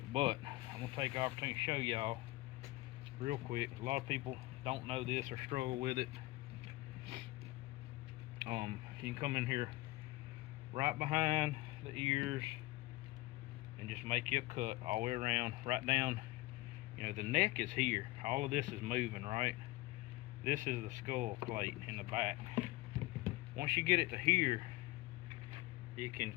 but I'm going to take the opportunity to show y'all real quick. A lot of people don't know this or struggle with it. You can come in here right behind the ears and just make you a cut all the way around, right down. You know, the neck is here. All of this is moving, right? This is the skull plate in the back. Once you get it to here, you can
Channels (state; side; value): quieter; right; 19.9 dB